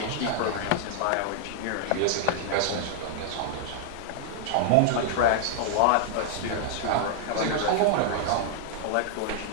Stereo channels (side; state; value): both; different; correlation -0.01